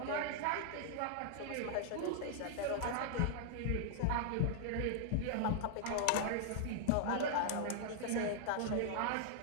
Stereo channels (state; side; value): different; both; correlation -0.01